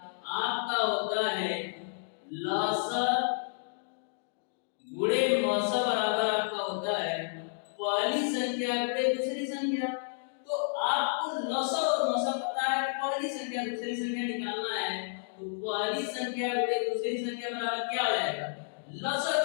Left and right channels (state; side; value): silent; right; digital silence